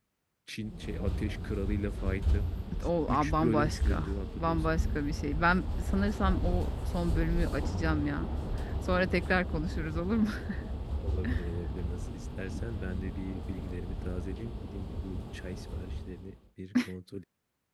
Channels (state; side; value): identical; both; correlation 1.00